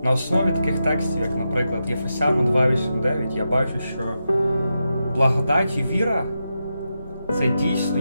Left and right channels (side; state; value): both; inverted; correlation -0.88